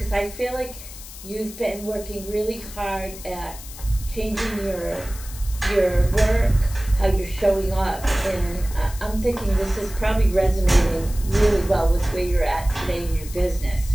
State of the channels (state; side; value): noise; left; hiss, 15 dB below the sound